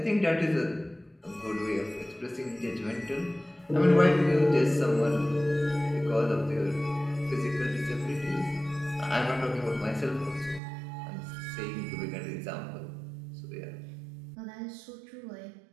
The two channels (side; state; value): left; drops out; at 10.6 s